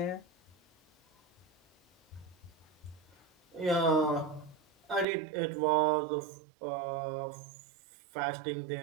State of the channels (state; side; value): drops out; left; at 5.1 s